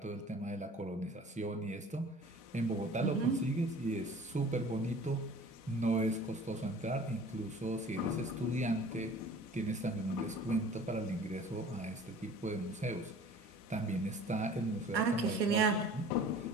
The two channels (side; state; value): both; normal; correlation 0.46